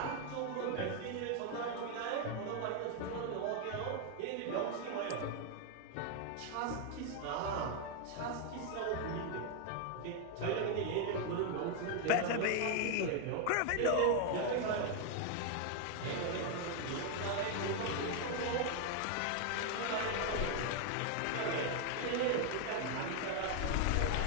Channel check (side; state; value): both; different; correlation 0.00